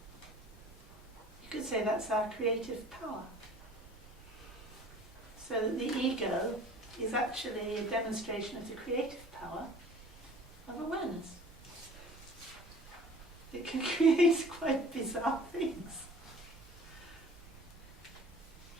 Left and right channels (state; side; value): normal; both; correlation 0.47